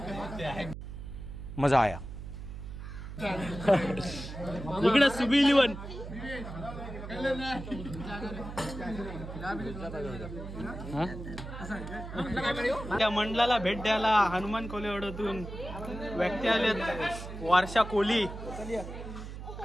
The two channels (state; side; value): noise; right; hum, 9 dB below the sound